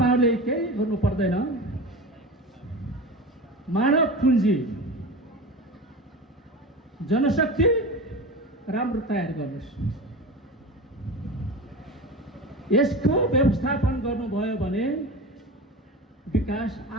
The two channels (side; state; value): both; normal; correlation 0.29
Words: केही गर्नु पर्दैन, मानव पुँजी, जनशक्ति राम्रो तयार गर्नुहोस्, यसको व्यवस्थापन गर्नुभयो भने विकास